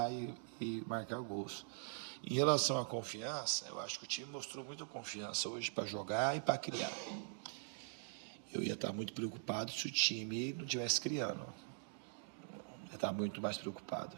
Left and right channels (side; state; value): left; silent; digital silence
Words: e marcar gols. Em relação à confiança, eu acho que o time mostrou muita confiança hoje para jogar e para criar. Eu ia estar muito preocupado se o time não estivesse criando. Eu ia estar muito mais preocupado.